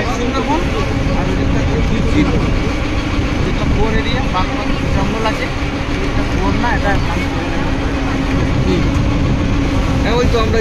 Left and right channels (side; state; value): both; identical; correlation 1.00